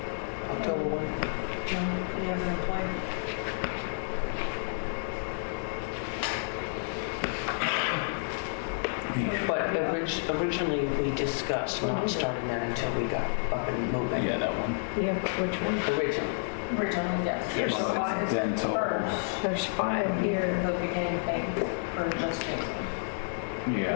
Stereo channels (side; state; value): right; silent; digital silence